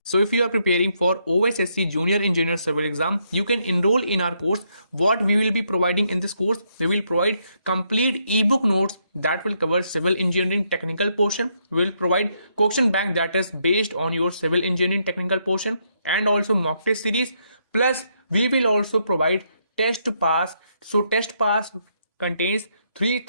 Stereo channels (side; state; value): both; inverted; correlation -0.76